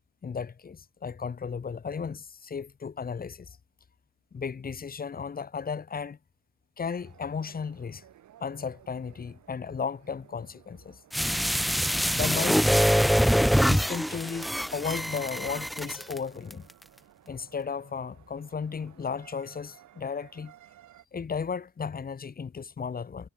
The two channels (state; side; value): normal; both; correlation 0.81